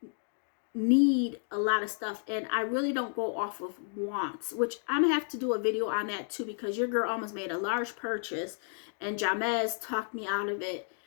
need a lot of stuff, and I really don't go off of wants, which I'm gonna have to do a video on that too, because your girl almost made a large purchase and Jamez talked me out of it.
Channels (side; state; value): right; silent; 57 dB below the other